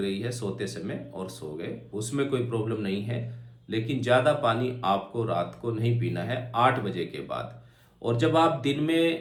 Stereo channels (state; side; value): identical; both; correlation 1.00